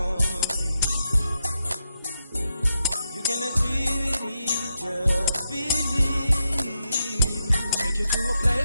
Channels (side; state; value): both; inverted; correlation -0.85